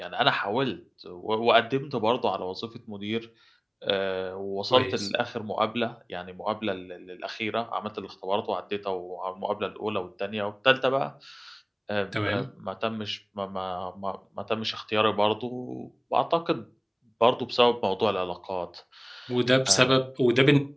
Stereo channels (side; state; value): both; identical; correlation 1.00